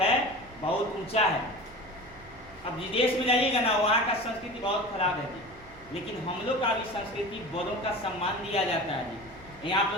बहुत ऊंचा है। अब विदेश में जाइएगा ना, वहाँ का संस्कृति बहुत खराब है जी। लेकिन हम लोग का भी संस्कृति, बड़ों का सम्मान दिया जाता है जी। यहाँ आप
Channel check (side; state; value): right; noise; hum, 22 dB below the sound